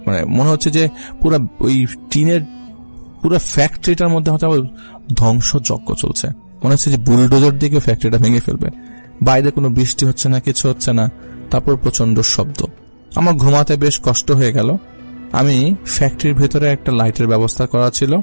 মানে মনে হচ্ছে যে পুরো ওই টিনের পুরো ফ্যাক্টরিটার মধ্যে হয়তো ধ্বংসযজ্ঞ চলছে। মনে হচ্ছে যে বুলডোজার দিকে ফ্যাক্টরিটা ভেঙে ফেলবে। বাইরে কোনো বৃষ্টি হচ্ছে না, কিছু হচ্ছে না, তারপর প্রচন্ড শব্দ। আমার ঘুমাতে বেশ কষ্ট হয়ে গেল। আমি ফ্যাক্টরির ভেতরে একটা লাইটের ব্যবস্থা করা ছিল,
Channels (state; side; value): inverted; both; correlation -1.00